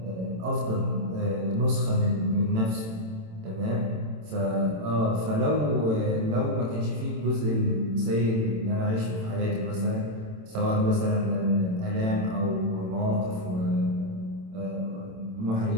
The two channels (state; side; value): late; left; 27 ms